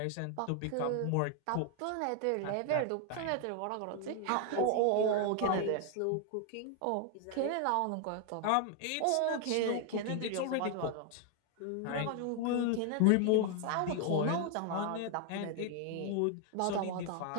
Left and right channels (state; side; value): different; both; correlation 0.00